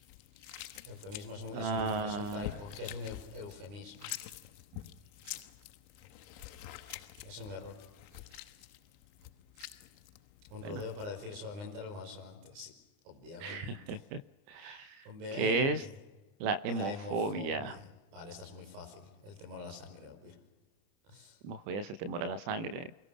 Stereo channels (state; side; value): late; left; 30 ms